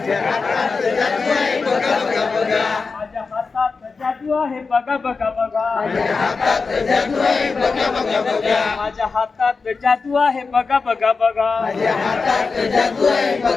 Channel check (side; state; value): right; quieter; 4.5 dB